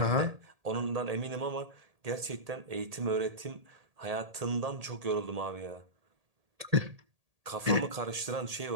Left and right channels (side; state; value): left; late; 1.8 ms